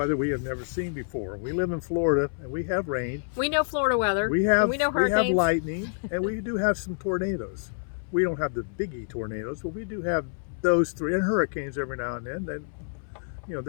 we have never seen before. We live in Florida, and we have rain. We know Florida weather. We have and we know hurricanes. lightning, and we do have some tornadoes. We don't have the biggie tornadoes, but we do have those three, and hurricanes every now and then.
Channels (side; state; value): right; silent; 60 dB below the other